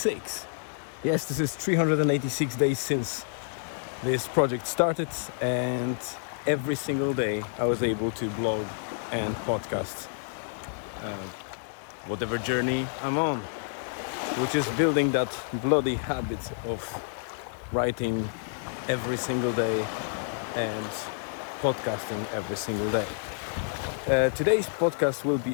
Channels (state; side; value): silent; right; digital silence